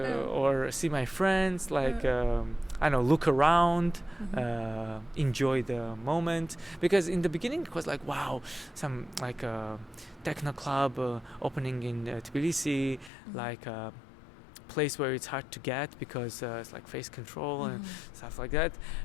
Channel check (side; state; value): right; drops out; at 13.1 s